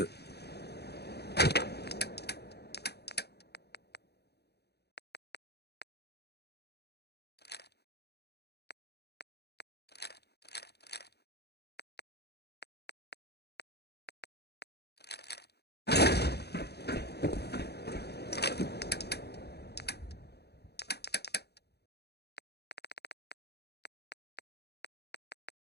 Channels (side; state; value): right; late; 0.48 ms